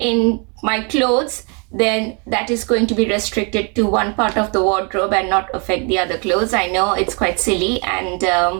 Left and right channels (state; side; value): quieter; left; 34.3 dB